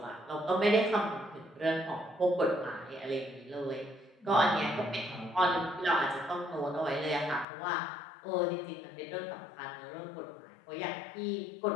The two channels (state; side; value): drops out; right; at 7.5 s